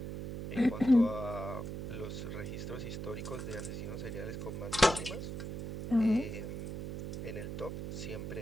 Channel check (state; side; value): noise; right; hum, 5 dB below the sound